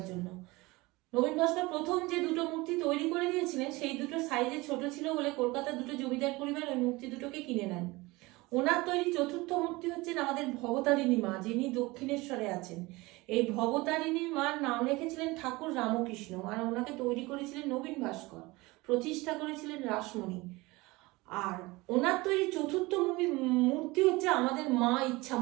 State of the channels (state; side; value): quieter; left; 22.2 dB